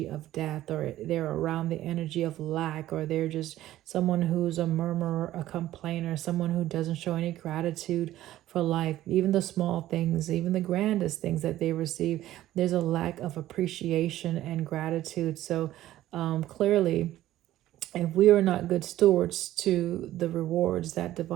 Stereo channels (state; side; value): quieter; left; 14.2 dB